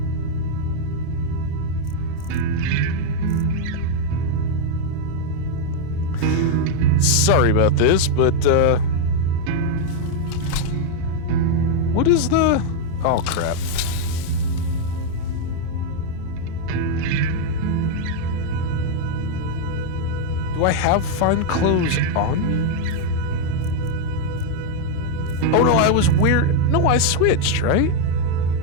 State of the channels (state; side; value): different; both; correlation 0.00